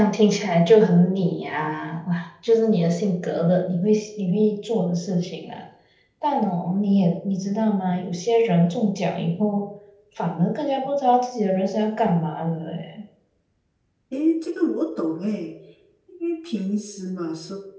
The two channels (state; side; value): identical; both; correlation 1.00